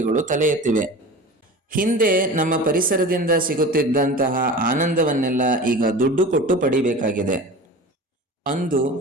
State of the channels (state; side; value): normal; both; correlation 0.35